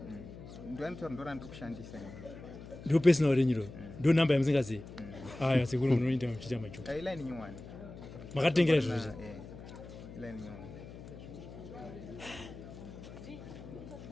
ndoanotaura ndo randiri kushandisa ndo personal renyu ro ndo nhamba yamusingazivi aya sekuru munoita muchiita majoka iline nyuwani makatengera zvozvo iline nyuwani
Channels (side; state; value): left; noise; hum, 14 dB below the sound